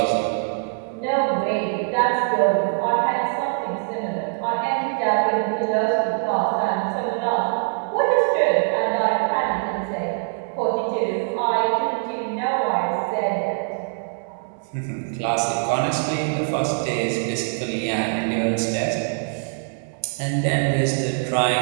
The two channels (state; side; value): silent; left; 63 dB below the other